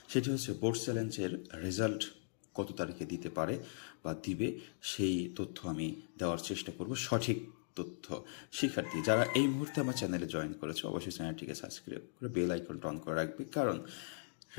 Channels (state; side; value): silent; right; digital silence